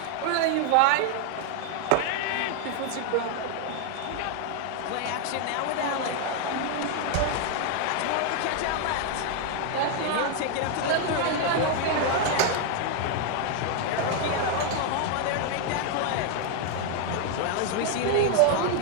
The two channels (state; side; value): different; both; correlation 0.00